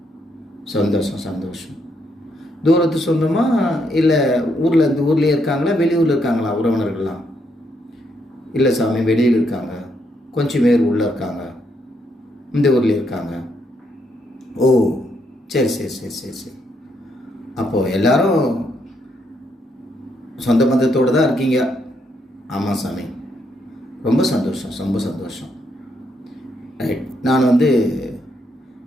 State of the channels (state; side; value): normal; both; correlation 0.76